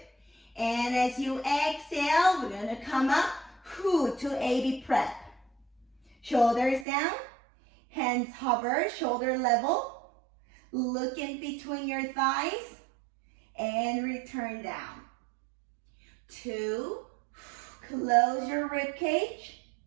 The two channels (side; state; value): left; drops out; at 6.9 s